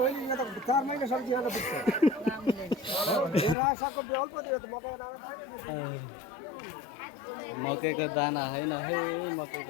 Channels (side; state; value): right; drops out; at 3.6 s